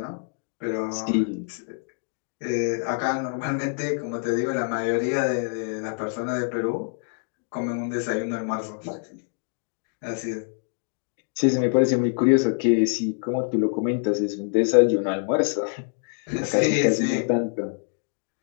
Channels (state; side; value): silent; right; digital silence